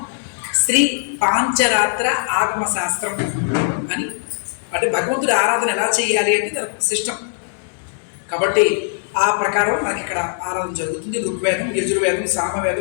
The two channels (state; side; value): silent; right; digital silence